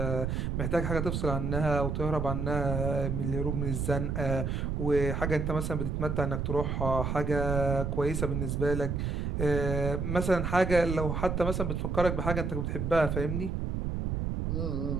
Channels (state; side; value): noise; right; rumble, 1 dB below the sound